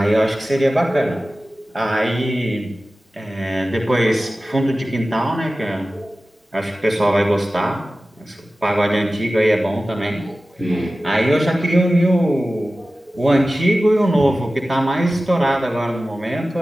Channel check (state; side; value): normal; both; correlation 0.96